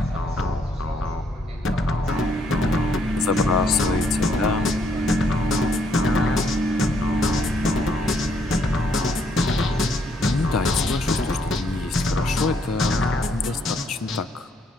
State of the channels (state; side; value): normal; both; correlation 0.70